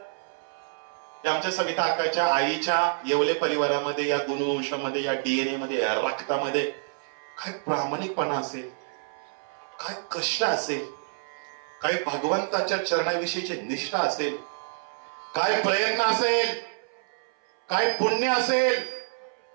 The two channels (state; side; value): silent; left; 58 dB below the other